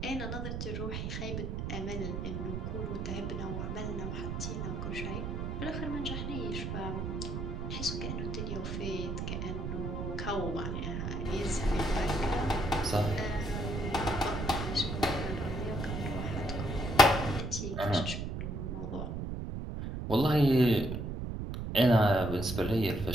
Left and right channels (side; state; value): right; noise; rumble, 3 dB below the sound